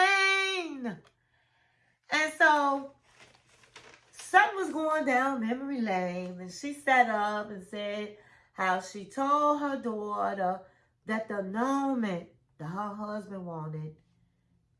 And so Sutton was going down memory lane, and she sat up and said how she told her daughter that the annulment that her husband wanted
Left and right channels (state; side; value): identical; both; correlation 1.00